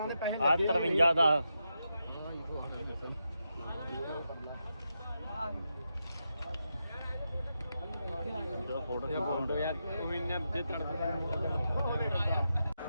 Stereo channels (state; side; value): inverted; both; correlation -0.86